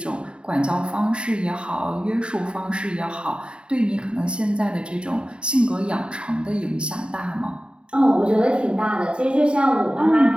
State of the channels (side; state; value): left; late; 0.053 ms